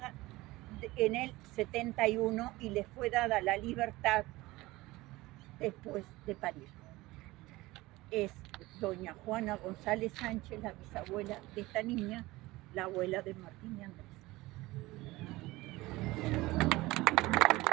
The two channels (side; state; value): left; quieter; 19.7 dB